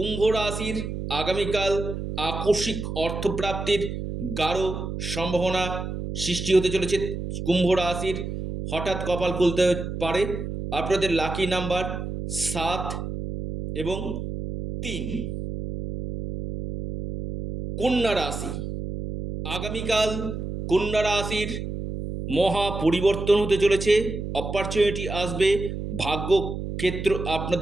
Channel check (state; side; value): noise; right; hum, 6 dB below the sound